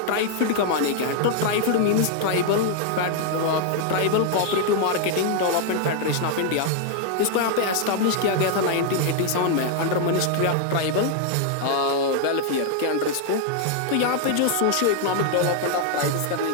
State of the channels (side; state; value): both; different; correlation 0.00